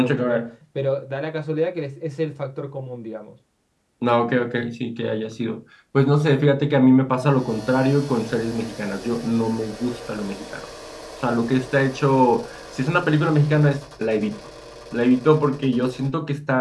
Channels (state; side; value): identical; both; correlation 1.00